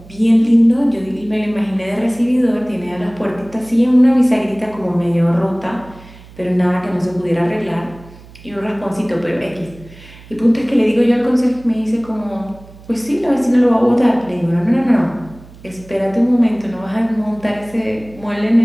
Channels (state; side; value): noise; right; hum, 21 dB below the sound